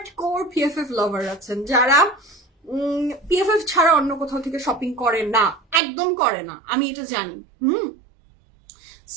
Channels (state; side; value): drops out; left; at 5.8 s